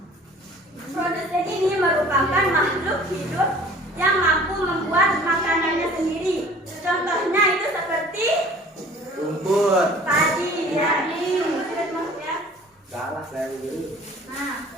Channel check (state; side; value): normal; both; correlation 0.48